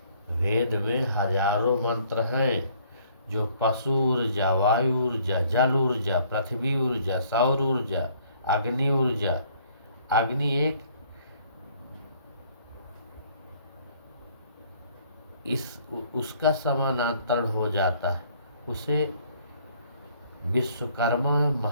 वेद में हजारों मंत्र हैं जो पशु ऊर्जा, वायु ऊर्जा, जल ऊर्जा, पृथ्वी ऊर्जा, सौर ऊर्जा, अग्नि ऊर्जा। अग्नि एक उसका समानांतर हो जाता है, उसे विश्वकर्मा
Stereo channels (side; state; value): both; inverted; correlation -0.61